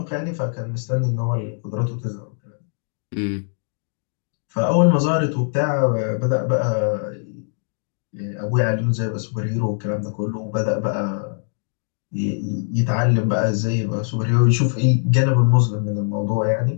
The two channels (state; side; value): silent; right; 64 dB below the other